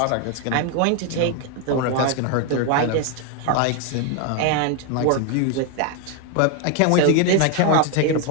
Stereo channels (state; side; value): different; both; correlation 0.01